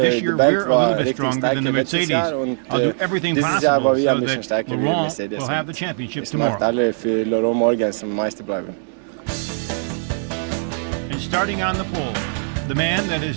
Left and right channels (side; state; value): left; silent; 65 dB below the other